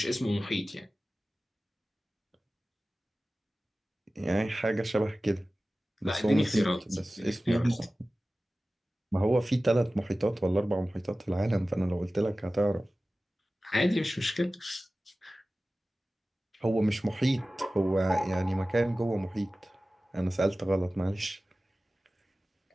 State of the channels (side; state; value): both; normal; correlation 0.96